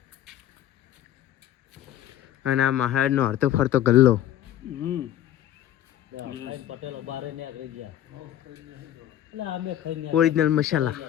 અને આ મહારાજનો હરતો ફરતો ગલ્લો। ઓરિજિનલ મસાલા।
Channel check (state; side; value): quieter; right; 12.0 dB